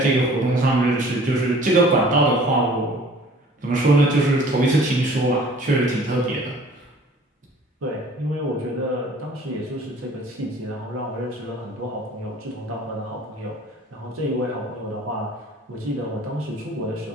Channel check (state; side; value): normal; both; correlation 0.50